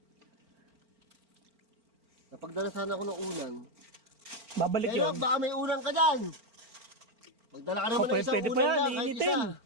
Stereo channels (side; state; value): left; late; 4.4 ms